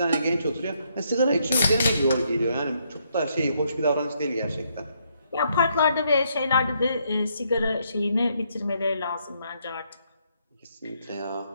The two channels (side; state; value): both; inverted; correlation -0.74